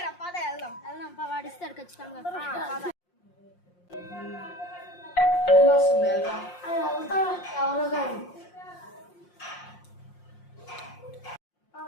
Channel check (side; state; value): right; late; 5.6 ms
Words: రా, పద వెళ్దాం. వాడిస్తాడు ఖచ్చితంగా. ఎవరు కానీ